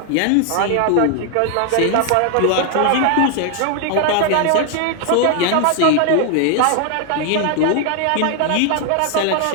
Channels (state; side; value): different; both; correlation 0.00